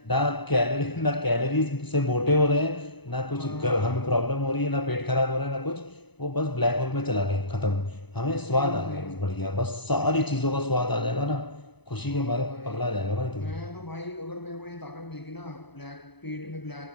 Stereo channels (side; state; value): right; late; 0.99 ms